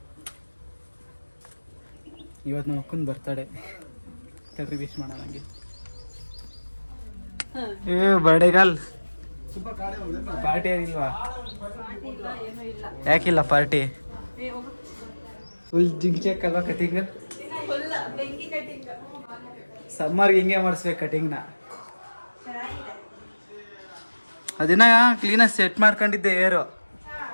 ಇವತ್ತು ನಮ್ಮ ಅಕ್ಕನ ಬರ್ತಡೆ, ತಡ್ರಿ ವಿಶ್ ಮಾಡೋಣ ನನಗೆ. ಬರ್ಡೇಗಲ್ ಪಾರ್ಟಿ ಏನಿಲ್ವಾ? ಯಾಕಿಲ್ಲ ಪಾರ್ಟಿ? ಫುಲ್ ಜಿಂಕ್ ಅಲ್ವಾ ಕಟಿಂಗ್? ಸಮ್ಮರ್ಗೆ ಹಿಂಗೆ ಮಾಡಿಸ್ಬೇಕು ಕಟಿಂಗ್ನ. ಅದನ್ನ ಕ್ಲೀನಾಗಿ ಸೆಟ್ ಮಾಡ್ಕೊಂಡಿದ್ದೆ ಏರು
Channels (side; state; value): both; inverted; correlation -1.00